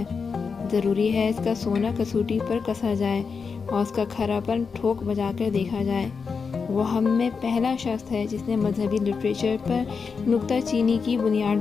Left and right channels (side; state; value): right; quieter; 5.4 dB